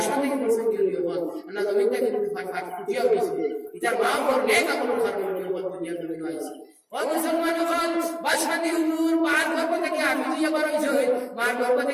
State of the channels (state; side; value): identical; both; correlation 1.00